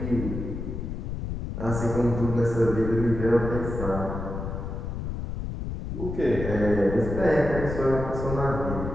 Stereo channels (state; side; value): noise; left; rumble, 5 dB below the sound